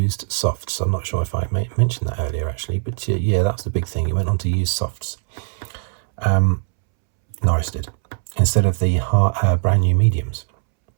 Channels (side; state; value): left; silent; 66 dB below the other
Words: softs. I'm not sure if I mentioned that earlier actually, but yeah, that's the big thing. He went on to use softs. Norris did, instead of the brand new mediums.